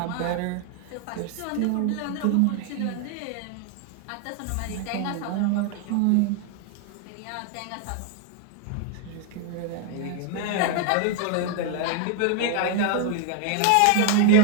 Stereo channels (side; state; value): both; different; correlation 0.01